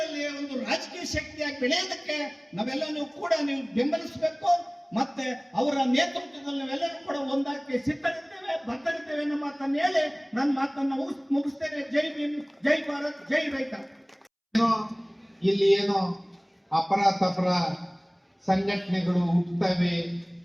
ಒಂದು ರಾಜಕೀಯ ಶಕ್ತಿಯಾಗಿ ಬೆಳೆಯೋದಕ್ಕೆ ನಾವೆಲ್ಲರೂ ಕೂಡ ನೀವು ಬೆಂಬಲಿಸಬೇಕು. ಮತ್ತೆ ಅವರ ನೇತೃತ್ವದಲ್ಲಿ ನಾವೆಲ್ಲರೂ ಕೂಡ ಒಂದಾಗಿ ಸಿದ್ಧರಿದ್ದೇವೆ, ಬದ್ಧರಿದ್ದೇವೆ ಅನ್ನೋ ಮಾತನ್ನು ಹೇಳಿ ನನ್ನ ಮಾತನ್ನ ಮುಗಿಸ್ತೇನೆ. ಜೈ ಭೀಮ್, ಜೈ ಭಾರತ್, ಜೈ ರೈತ. ಇಲ್ಲಿ ಏನೋ ಅಪರ ಸಂಘಟನೆಗಳು ಹುಟ್ಟುತ್ತವೆ,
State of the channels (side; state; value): both; identical; correlation 1.00